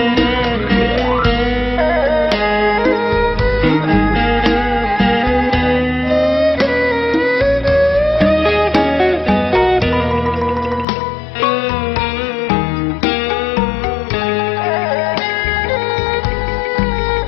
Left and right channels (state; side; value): drops out; right; at 10.9 s